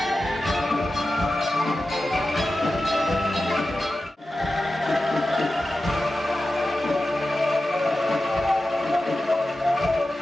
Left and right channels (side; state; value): both; normal; correlation 0.93